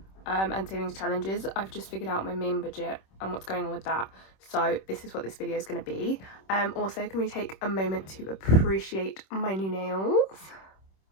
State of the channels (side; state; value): right; late; 26 ms